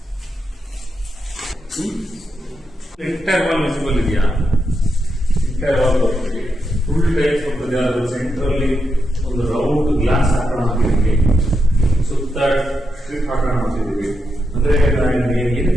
ಎಂಟೈರ್ ವಾಲ್ ವಿಸಿಬಲ್ ಇದೆಯಾ? ಎಂಟೈರ್ ವಾಲ್ ಬರ್ತದೆ, ಫುಲ್ ಟೈಪ್ ಬರ್ತದೆ. ಅದ್ರ ಸೆಂಟ್ರಲ್ಲಿ ಒಂದು ರೌಂಡ್ ಗ್ಲಾಸ್ ಹಾಕೋಣ ಅಂತಿದ್ದೀವಿ, ಸುತ್ತ ಸ್ಟ್ರಿಪ್ ಹಾಕೋಣ ಅಂತಿದ್ದೀವಿ. ಅಂದ್ರೆ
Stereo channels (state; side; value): normal; both; correlation 0.85